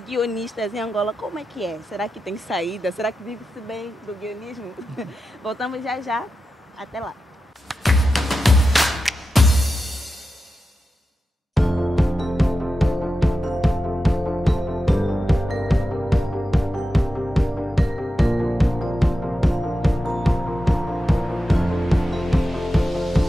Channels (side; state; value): both; normal; correlation 0.91